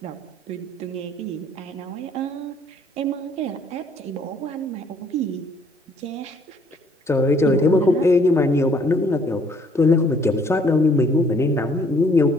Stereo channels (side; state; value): both; normal; correlation 0.62